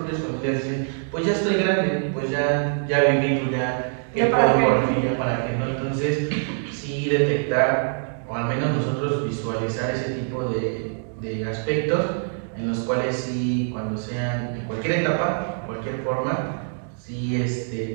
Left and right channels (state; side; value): silent; left; digital silence